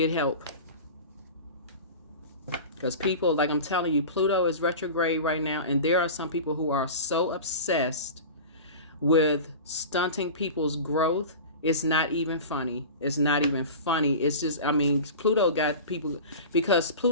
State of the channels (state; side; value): inverted; both; correlation -0.33